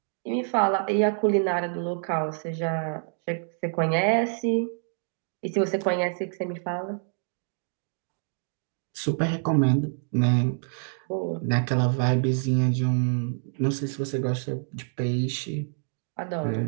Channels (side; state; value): left; silent; 60 dB below the other